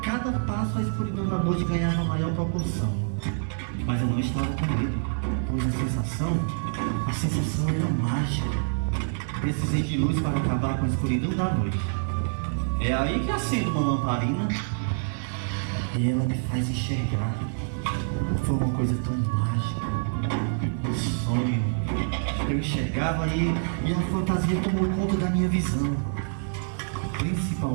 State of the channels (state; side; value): silent; left; 60 dB below the other